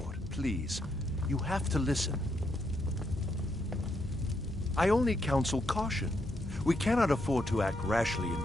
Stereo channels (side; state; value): both; normal; correlation 0.78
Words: please. You have to listen. I only counsel caution. We cannot afford to act rashly in